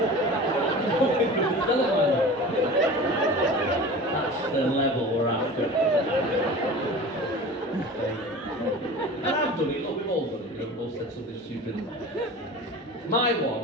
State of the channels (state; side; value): normal; both; correlation 0.36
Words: That's the level we're after. And I've done it, look, we've all done it, you know, we've all said something stupid. My